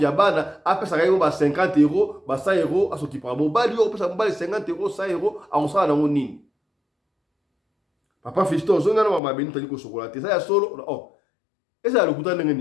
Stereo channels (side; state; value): right; drops out; at 9.2 s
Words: bana apesa kayo ba 50 €, ba 100 € aso ki pa mobali yo pesa mobali 50 €, 100 € a on sala nango nini. papa Fiston zonga na mama Benita liko sokola te ça ya solo oh eza lokuta ndenge